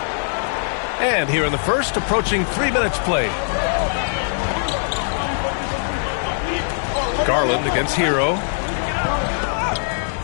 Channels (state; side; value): silent; right; digital silence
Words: And here in the first, approaching 3 minutes played. Garland against Hero.